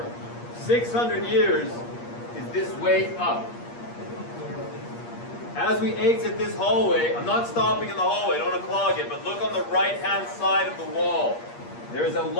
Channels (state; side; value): late; right; 8.5 ms